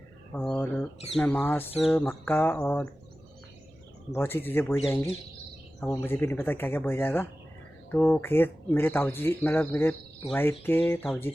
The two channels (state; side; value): normal; both; correlation 0.96